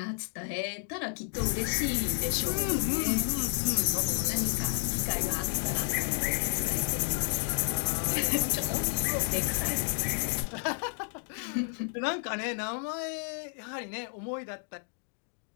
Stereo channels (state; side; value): silent; right; 57 dB below the other